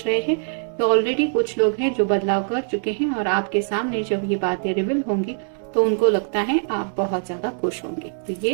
रहे हैं कि ऑलरेडी कुछ लोग हैं जो बदलाव कर चुके हैं, और आपके सामने जब ये बातें रिवील होंगी तो उनको लगता है आप बहुत ज्यादा खुश होंगे। तो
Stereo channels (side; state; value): left; silent; 64 dB below the other